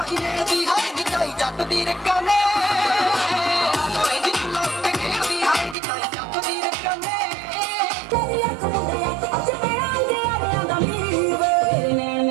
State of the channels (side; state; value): left; drops out; at 5.8 s